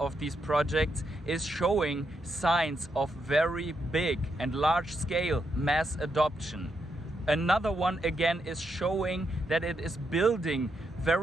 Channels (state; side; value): normal; both; correlation 0.81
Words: these projects is showing signs of very big and large scale mass adoption. Another one again is showing that it is building